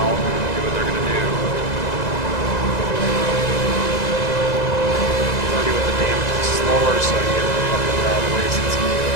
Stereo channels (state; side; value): late; right; 1.9 ms